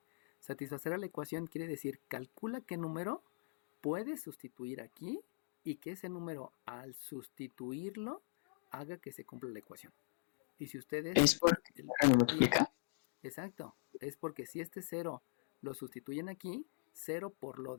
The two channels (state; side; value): silent; right; digital silence